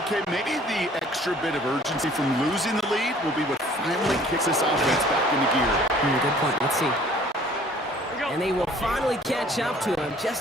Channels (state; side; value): normal; both; correlation 0.54